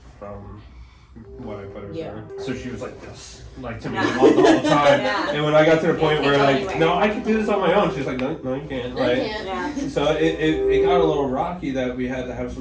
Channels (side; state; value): both; identical; correlation 1.00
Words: from what I put her through. So she was like this, like to me the whole time. And when I got to the point where like, no, I can do this on my own, she's like, no, you can't. So it got a little rocky that we had to have